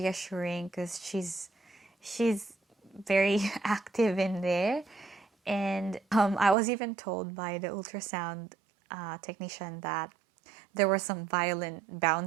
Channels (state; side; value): drops out; left; at 6.6 s